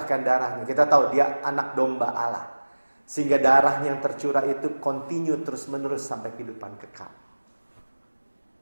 darahnya. Kita tahu dia anak domba Allah. Sehingga darahnya yang tercurah itu continue terus-menerus sampai kehidupan kekal.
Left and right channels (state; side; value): inverted; both; correlation -1.00